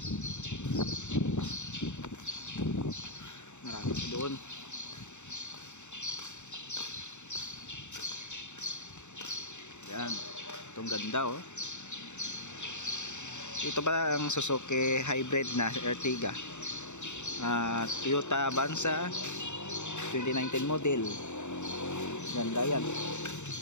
Marami doon. Yan, itong ganda oh. Ito ba ang Suzuki hybrid na Ertiga, Toyota Avanza 2019 model. Ganda yan.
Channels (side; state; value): right; late; 0.84 ms